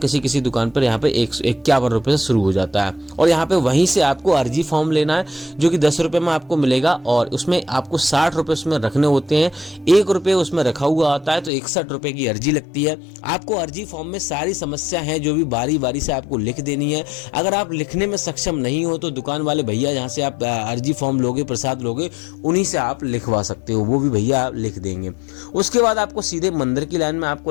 किसी दुकान पर यहाँ पे 51 रुपये से शुरू हो जाता है। और यहाँ पे वहीं से आपको अर्जी फॉर्म लेना है, जो कि 10 रुपये में आपको मिलेगा और उसमें आपको 60 रुपये उसमें रखने होते हैं। 1 रुपये उसमें रखा हुआ आता है, तो 61 रुपये की अर्जी लगती है। आपको अर्जी फॉर्म में सारी समस्या है जो भी बारी बारी से आपको लिख देनी है। अगर आप लिखने में सक्षम नहीं हो तो दुकान वाले भैया जहाँ से आप अर्जी फॉर्म लोगे, प्रसाद लोगे, उन्हीं से आप लिखवा सकते हो, वो भी भैया लिख देंगे। उसके बाद आपको सीधे मंदिर की लाइन में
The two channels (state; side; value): drops out; right; at 11.5 s